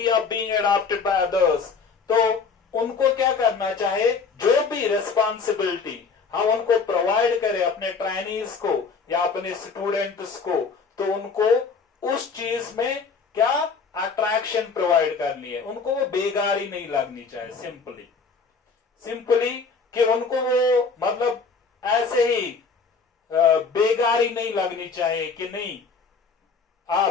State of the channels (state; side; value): quieter; right; 5.0 dB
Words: of being adopted by others, तो उनको क्या करना चाहे, जो भी रिस्पॉन्सिबिलिटी हम उनको प्रोवाइड करें अपने ट्रेनीज को या अपने स्टूडेंट्स को, तो उनको उस चीज में क्या अट्रैक्शन प्रोवाइड करनी है, उनको वो बेगारी नहीं लगनी चाहिए। सिंपली कि उनको वो मतलब ऐसे ही बेगारी नहीं लगनी चाहिए कि नहीं